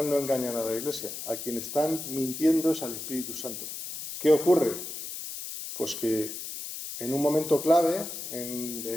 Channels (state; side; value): noise; left; hiss, 8 dB below the sound